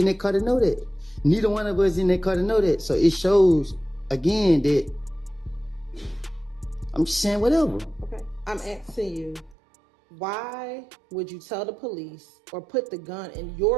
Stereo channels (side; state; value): left; drops out; at 9.6 s